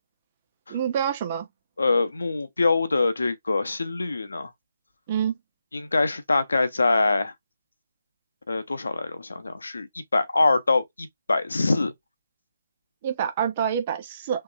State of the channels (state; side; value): inverted; both; correlation -0.86